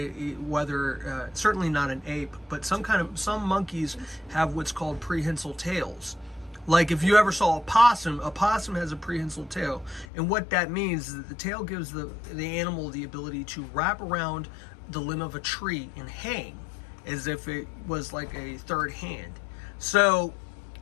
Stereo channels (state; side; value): drops out; right; at 10.1 s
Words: whether certainly not an ape, but some monkeys have what's called prehensile tails. Like if you ever saw a possum has a prehensile tail, and what that means is that the tail gives the animal the ability to wrap around the limb of a tree and hang as if it was like a third hand. So